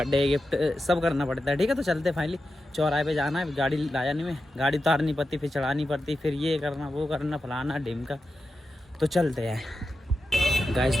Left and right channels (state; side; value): normal; both; correlation 0.90